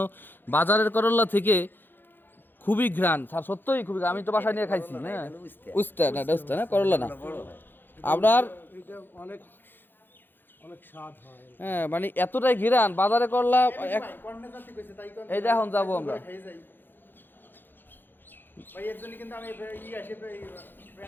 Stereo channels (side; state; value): right; late; 0.096 ms